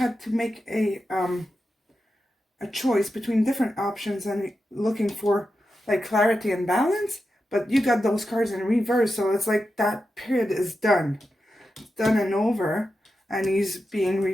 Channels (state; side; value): normal; both; correlation 0.89